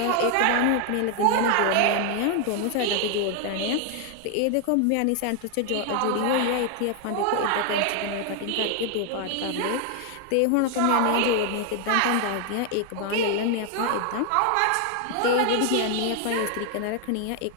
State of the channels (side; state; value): both; different; correlation 0.00